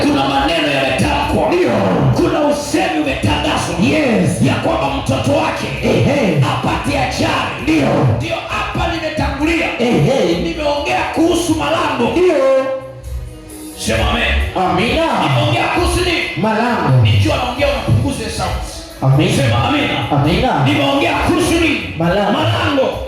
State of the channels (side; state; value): both; identical; correlation 1.00